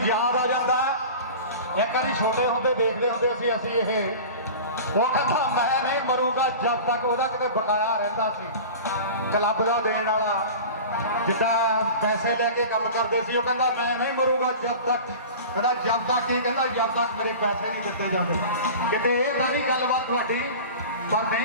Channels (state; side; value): inverted; both; correlation -0.36